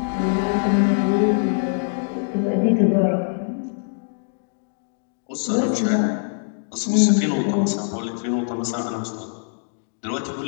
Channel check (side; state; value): right; silent; digital silence